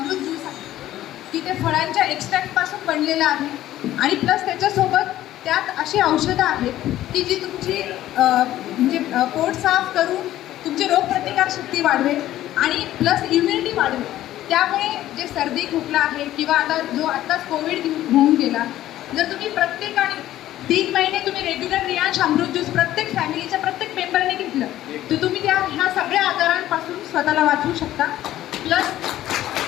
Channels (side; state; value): right; quieter; 13.7 dB